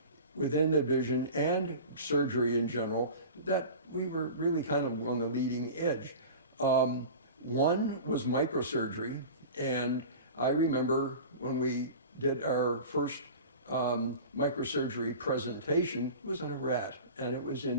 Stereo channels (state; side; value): inverted; both; correlation -0.35